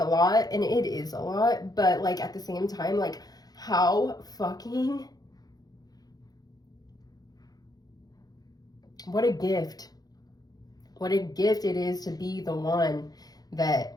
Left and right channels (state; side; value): late; right; 0.19 ms